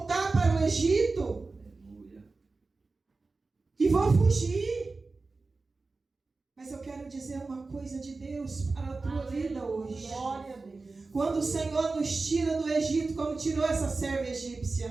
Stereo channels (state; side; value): quieter; left; 3.8 dB